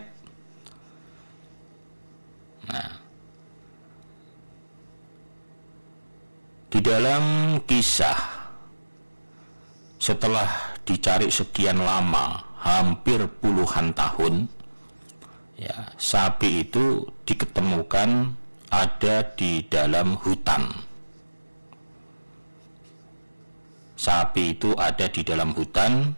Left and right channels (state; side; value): inverted; both; correlation -1.00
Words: Nah, di dalam kisah setelah dicari sekian lama, hampir puluhan tahun, ya, sapi itu diketemukan ada di dalam hutan. Sapi itu ada di dalam hutan,